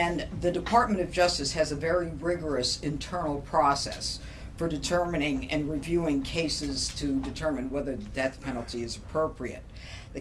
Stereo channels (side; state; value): both; identical; correlation 1.00